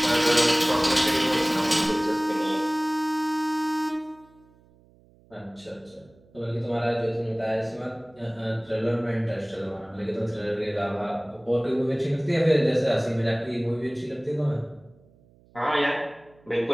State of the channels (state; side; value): noise; right; hum, 29 dB below the sound